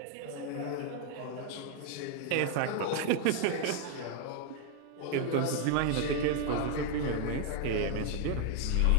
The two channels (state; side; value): different; both; correlation 0.01